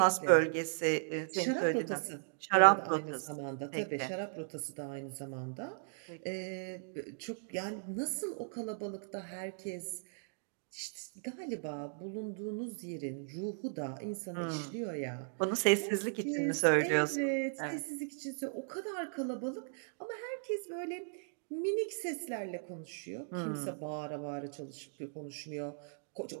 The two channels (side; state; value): left; silent; digital silence